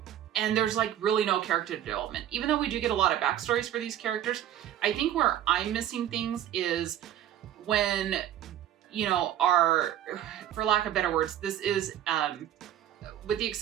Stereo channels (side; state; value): left; quieter; 11.4 dB